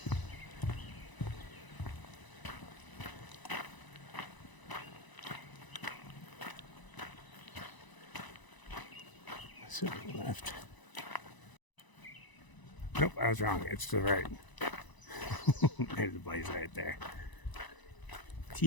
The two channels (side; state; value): right; late; 1.0 ms